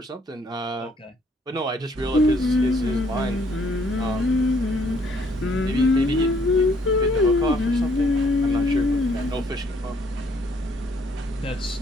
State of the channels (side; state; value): both; normal; correlation 0.65